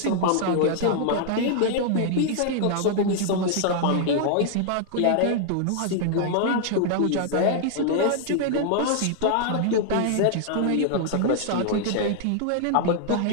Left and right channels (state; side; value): different; both; correlation -0.01